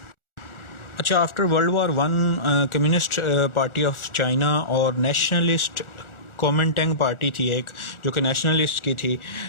अच्छा, after world war one communist party of China और नेशनलिस्ट कॉमिंटेंग पार्टी थी एक, जो कि नेशनलिस्ट की थी,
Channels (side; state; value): right; late; 1.4 ms